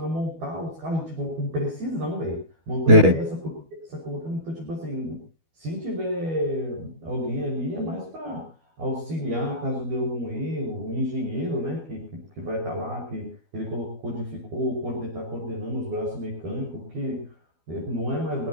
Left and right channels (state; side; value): late; left; 12 ms